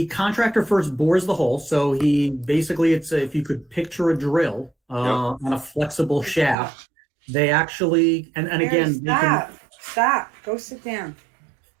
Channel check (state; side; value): drops out; left; at 6.6 s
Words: contractor first bores the hole. So he basically, if you could picture a drill on a flexible shaft, They actually, and Mary, again, stop. Go sit down.